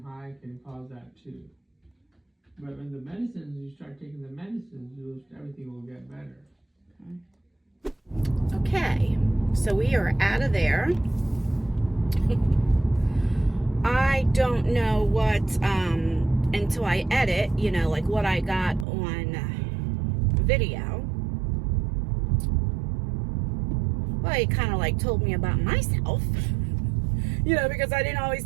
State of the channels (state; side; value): drops out; left; at 18.9 s